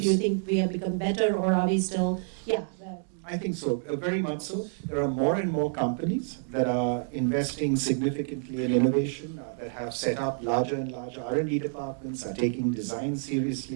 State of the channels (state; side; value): silent; left; digital silence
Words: you think we have become better, or are we still, I think so, very much so. There are more and more companies that are investing significantly in innovation, that have set up larger and larger R&D departments, are taking design